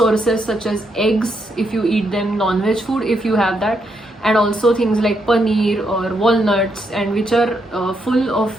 such as eggs if you eat them, non-veg food if you have that, and also things like paneer or walnuts, and which are full of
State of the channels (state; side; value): normal; both; correlation 0.79